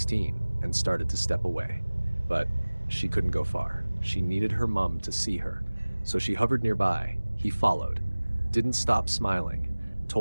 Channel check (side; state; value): both; inverted; correlation -1.00